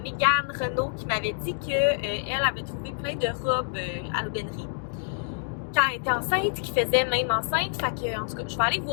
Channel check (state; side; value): silent; right; digital silence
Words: Mégane Renaud qui m'avait dit qu'elle avait trouvé plein de robes à l'aubainerie quand elle était enceinte, qui faisait même enceinte. Fait que, en tout cas, je vais aller